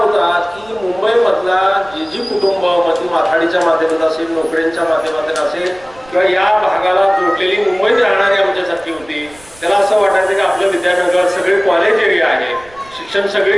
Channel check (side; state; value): right; noise; rumble, 25 dB below the sound